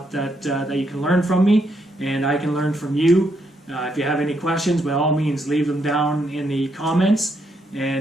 that you can learn from me, and I can learn from you. If you have any questions, by all means, leave them down in the comments,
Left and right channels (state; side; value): normal; both; correlation 0.77